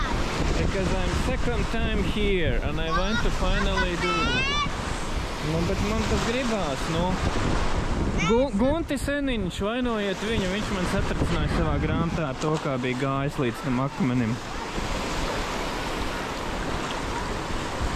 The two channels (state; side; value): identical; both; correlation 1.00